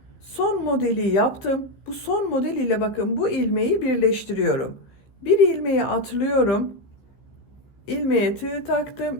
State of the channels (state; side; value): late; right; 15 ms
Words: Son modeli yaptım. Bu son model ile bakın bu ilmeği birleştiriyorum. Bir ilmeği atlıyorum. İlmeğe tığ taktım.